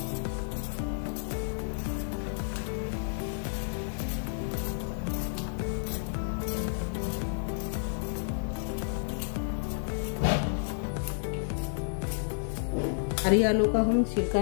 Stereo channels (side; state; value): right; silent; 56 dB below the other